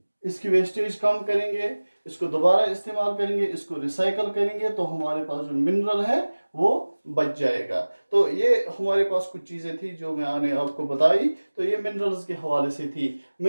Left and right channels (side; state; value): both; inverted; correlation -1.00